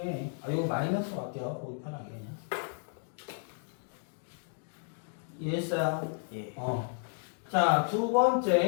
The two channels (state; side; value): silent; right; digital silence